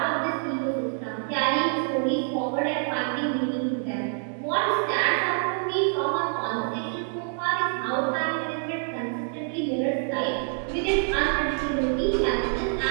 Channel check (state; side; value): silent; left; 61 dB below the other